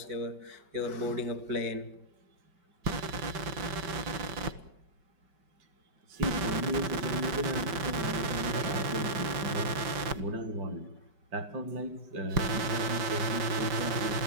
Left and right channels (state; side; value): late; left; 5.2 ms